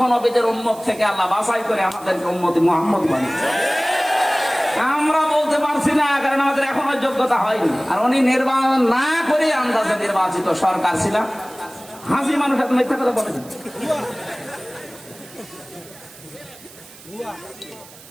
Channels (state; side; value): noise; right; hiss, 21 dB below the sound